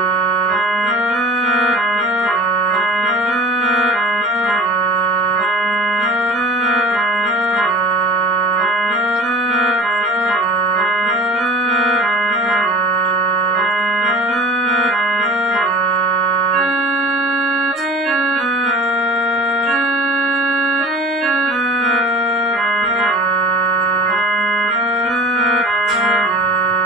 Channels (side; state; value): both; normal; correlation 0.43